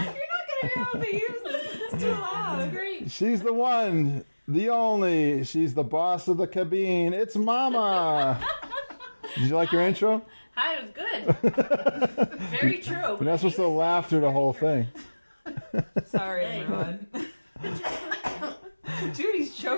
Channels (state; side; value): inverted; both; correlation -1.00